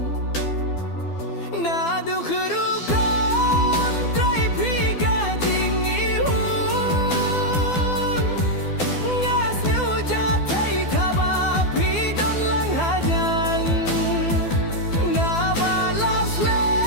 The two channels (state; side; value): late; right; 12 ms